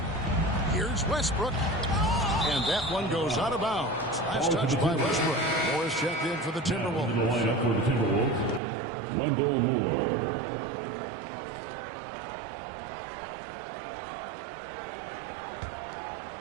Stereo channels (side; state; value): left; drops out; at 8.6 s